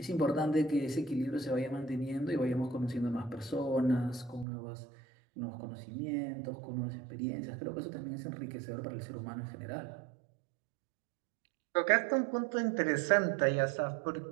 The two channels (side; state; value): left; drops out; at 4.5 s